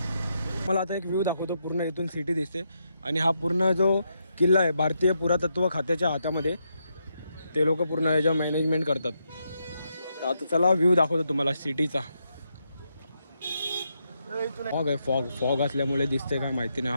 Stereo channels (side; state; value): both; inverted; correlation -0.81